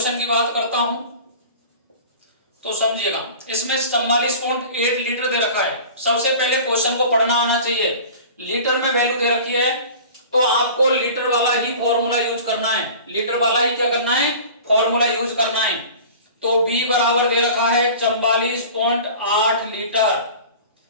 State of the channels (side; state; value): both; inverted; correlation -0.40